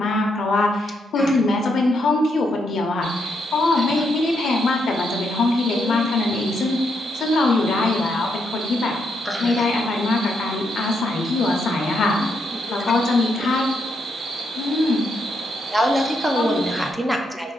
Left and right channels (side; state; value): both; normal; correlation 0.79